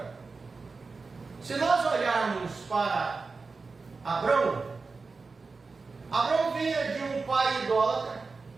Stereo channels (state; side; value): quieter; left; 4.2 dB